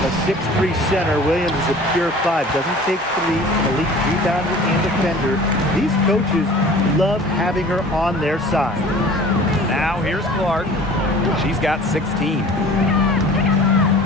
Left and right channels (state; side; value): normal; both; correlation 0.45